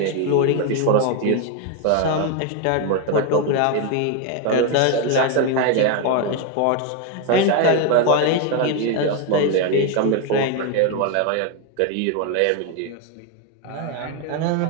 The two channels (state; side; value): different; both; correlation 0.02